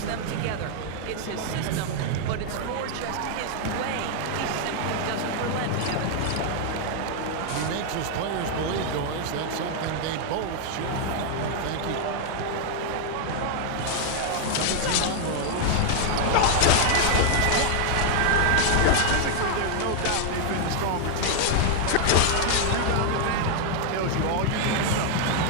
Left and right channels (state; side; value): different; both; correlation 0.00